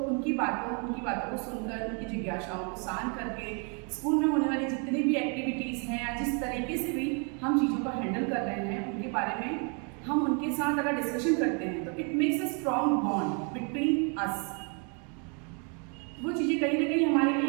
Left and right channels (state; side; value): quieter; left; 37.5 dB